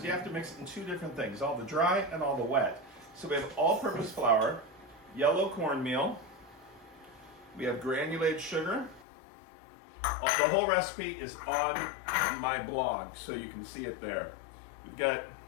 you have to mix it in two different things, all the dry and all the wet. So we have all-purpose flour, yellow cornmeal, we have granulated sugar. The whole recipe is on my blog, so you can see it there. We've got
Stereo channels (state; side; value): drops out; right; at 9.1 s